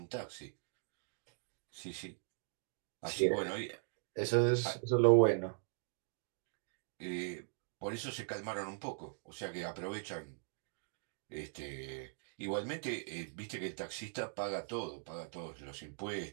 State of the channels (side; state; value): left; silent; digital silence